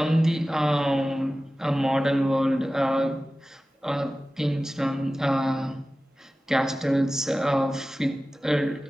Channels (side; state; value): both; normal; correlation 0.96